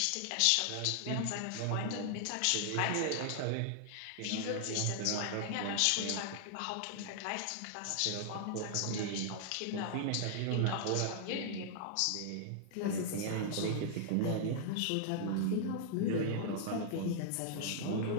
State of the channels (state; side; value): different; both; correlation -0.01